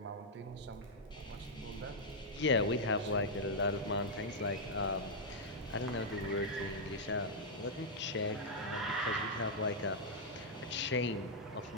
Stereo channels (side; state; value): both; normal; correlation -0.05